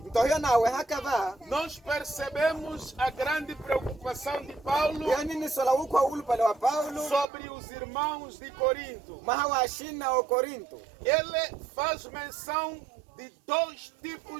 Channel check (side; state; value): left; drops out; at 7.2 s